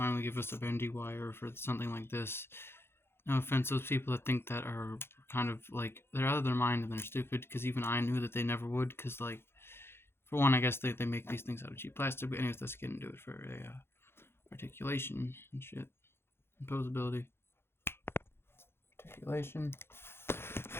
give us a bendy wire for something like this, no offense, those people that think that are kind of like they're out of their mind and they're stupid. Because even I knew that they never would. Because like, for one, I guess they make these things out of cheap plastic. But anyways, let's get into it for a articulation and shit, imposability, articulation.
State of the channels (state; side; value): late; right; 0.11 ms